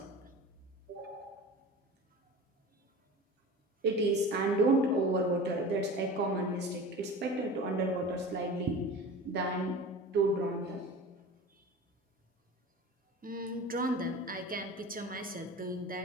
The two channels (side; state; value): both; normal; correlation 0.36